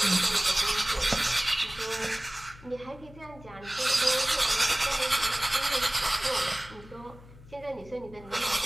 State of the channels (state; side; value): noise; left; hum, 20 dB below the sound